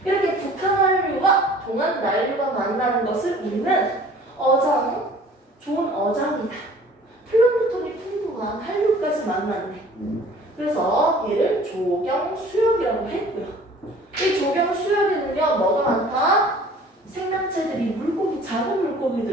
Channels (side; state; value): both; normal; correlation 0.50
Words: 이렇게 북한 한류와 동안 난류가 만나는 것을 우리는 어장, 좋은 어장이다. 플랑크톤이 풍부한 한류까지 만났네. 그래서 얘를 조경수역이라고 했고요. 이 조경수역에는요 뭐가 많다? 생명체들이 물고기, 작은